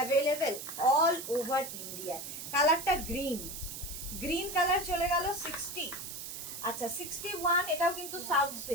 all over India. কালারটা গ্রিন কালার চলে গেল 60। আচ্ছা, 61, এটাও কিন্তু সাউথ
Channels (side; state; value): right; noise; hiss, 8 dB below the sound